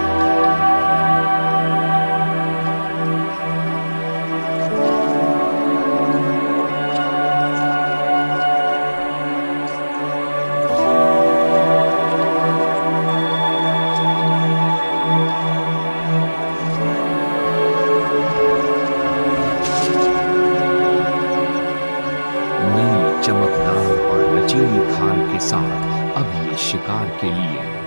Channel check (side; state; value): both; inverted; correlation -1.00